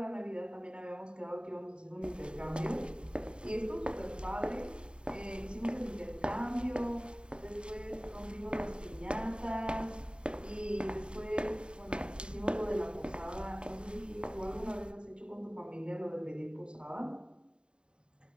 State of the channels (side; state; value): left; late; 0.051 ms